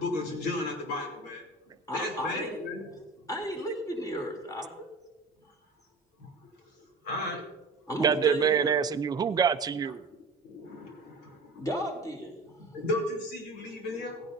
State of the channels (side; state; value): left; quieter; 3.2 dB